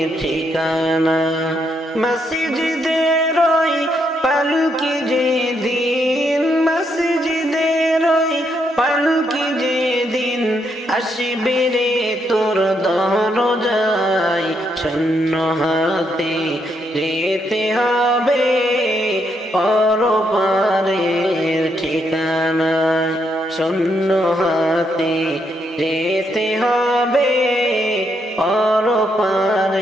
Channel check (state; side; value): normal; both; correlation 0.77